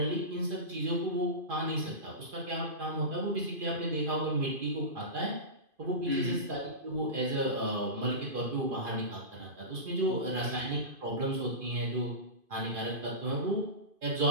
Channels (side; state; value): left; late; 2.5 ms